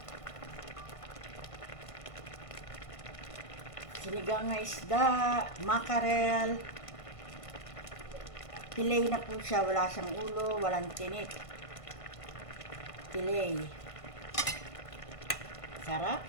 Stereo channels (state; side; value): late; right; 1.5 ms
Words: Sinigang na isda, mackerel. Fillet na po siya, wala siyang ulo, walang tinik. Fillet. Sarap.